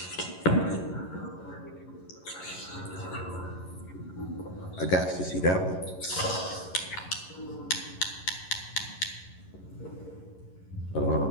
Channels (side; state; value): right; late; 11 ms